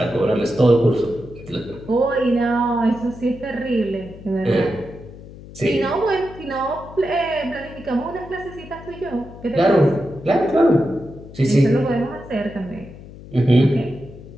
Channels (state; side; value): noise; left; hum, 16 dB below the sound